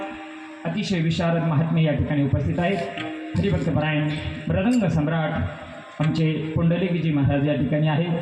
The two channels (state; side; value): identical; both; correlation 1.00